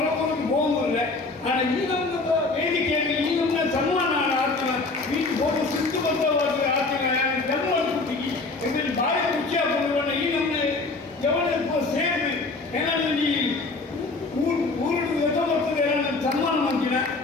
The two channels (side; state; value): right; quieter; 3.6 dB